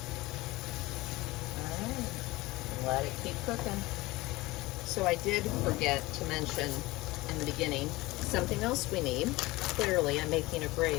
Alright, let it keep cooking. So I did forget to mention in the beginning, something else we need. Clearly, I'm making a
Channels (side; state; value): right; quieter; 20.5 dB